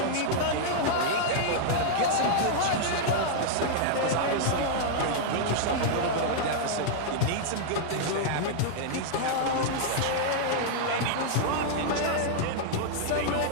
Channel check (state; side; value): different; both; correlation -0.01